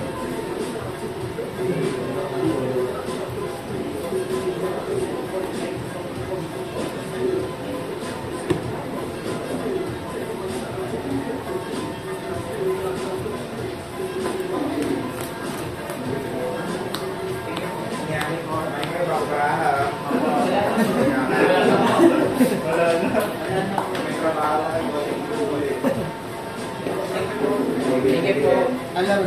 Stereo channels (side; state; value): both; identical; correlation 1.00